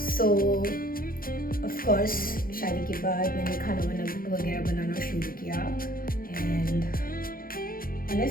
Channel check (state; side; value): late; right; 0.42 ms